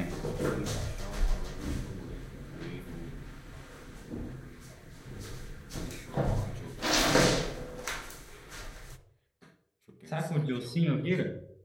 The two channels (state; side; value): identical; both; correlation 1.00